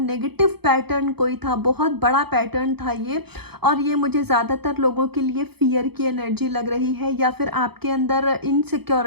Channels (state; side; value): late; left; 0.97 ms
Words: पैटर्न कोई था, बहुत बड़ा पैटर्न था ये, और ये मुझे ज़्यादातर लोगों के लिए फियर की एनर्जी लग रही है, या फिर आपके अंदर